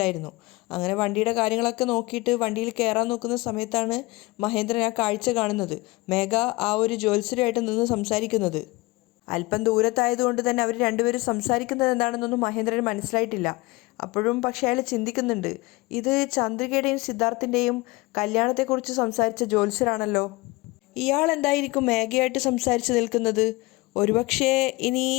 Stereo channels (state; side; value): quieter; right; 22.8 dB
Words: അങ്ങനെ വണ്ടിയുടെ കാര്യങ്ങളൊക്കെ നോക്കിയിട്ട് വണ്ടിയിൽ കയറാൻ നോക്കുന്ന സമയത്താണ് മഹേന്ദ്രൻ ആ കാഴ്ച കാണുന്നത്. മേഘ ആ ഒരു ജ്യോത്സ്യരുമായിട്ട് നിന്ന് സംസാരിക്കുന്നത്. അല്പം ദൂരത്തായതുകൊണ്ട് തന്നെ അവർ രണ്ടുപേരും സംസാരിക്കുന്നത് എന്താണെന്നൊന്നും മഹേന്ദ്രന് മനസ്സിലായിട്ടില്ല. അപ്പോഴും പക്ഷേ അയാൾ ചിന്തിക്കുന്നുണ്ട്, ഇത് ചന്ദ്രികയുടെയും സിദ്ധാർത്ഥിൻ്റെയും കല്യാണത്തെക്കുറിച്ച് സംസാരിച്ച ജ്യോത്സ്യരാണല്ലോ. ഇയാൾ എന്തായിരിക്കും മേഘയായിട്ട് സംസാരിച്ച് നിൽക്കുന്നത്? ഒരുപക്ഷേ ഇനി